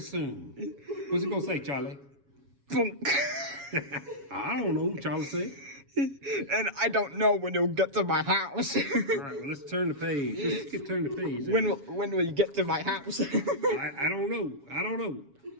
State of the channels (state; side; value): late; left; 7.2 ms